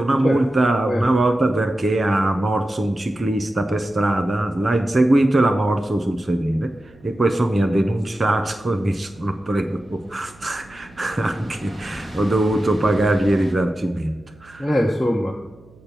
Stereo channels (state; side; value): noise; right; hum, 27 dB below the sound